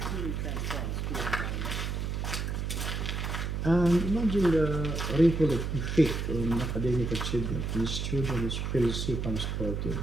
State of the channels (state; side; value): noise; right; hum, 2 dB below the sound